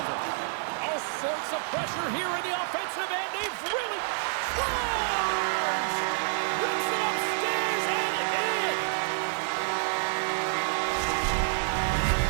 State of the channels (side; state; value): left; silent; digital silence